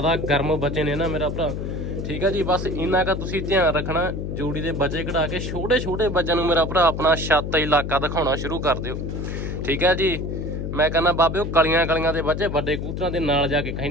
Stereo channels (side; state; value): left; noise; hum, 4 dB below the sound